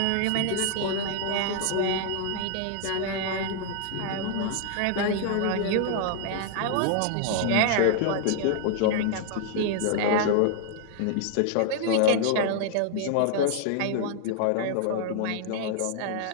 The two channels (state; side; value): different; both; correlation 0.00